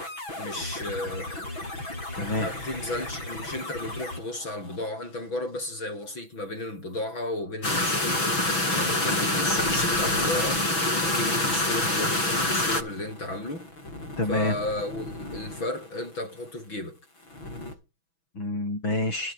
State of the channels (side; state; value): right; late; 6.1 ms